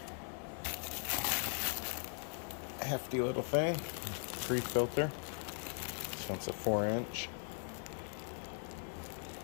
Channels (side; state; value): right; silent; 51 dB below the other